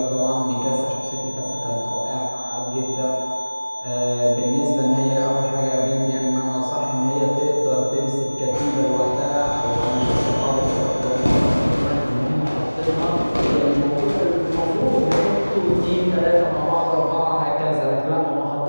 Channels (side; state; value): both; inverted; correlation -1.00